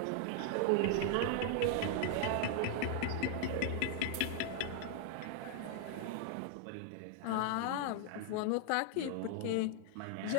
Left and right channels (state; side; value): different; both; correlation 0.00